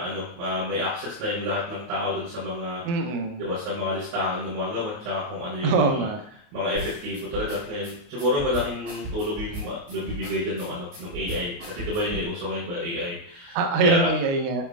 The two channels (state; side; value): late; left; 29 ms